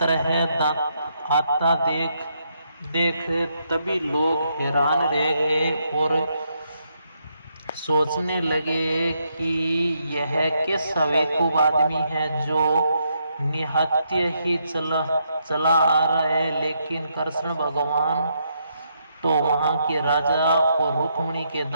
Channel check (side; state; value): both; inverted; correlation -0.77